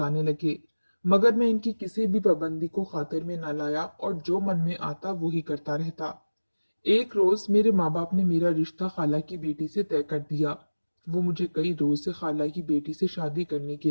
लगे। मगर मैं इनकी किसी भी पाबंदी को खातिर में न लाया, और जो मन में आता वो ही करता रहता। एक रोज मेरे माँ बाप ने मेरा रिश्ता खाला की बेटी से तय कर दिया। वो मुझे कई रोज से खाला की बेटी से शादी करने के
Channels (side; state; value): both; inverted; correlation -1.00